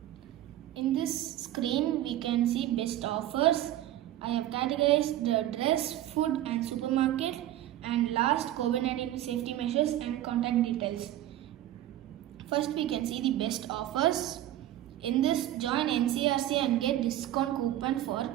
In this screen, we can see best offers. I have categorized the dress, food and supermarket, and last COVID-19 safety measures and contact details. First, we can see the best offers. In this, join NCRC and get discount coupon for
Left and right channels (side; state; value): left; quieter; 13.4 dB